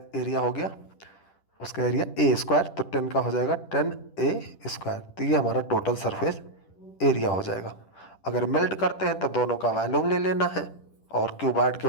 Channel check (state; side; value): late; right; 10 ms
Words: एरिया हो गया, उसका एरिया ए स्क्वायर, तो 10 का हो जाएगा 10a²। तो ये हमारा टोटल सरफेस एरिया हो जाएगा। अगर मेल्ट करते हैं तो दोनों का वॉल्यूम ले लेना है और क्यूबॉइड के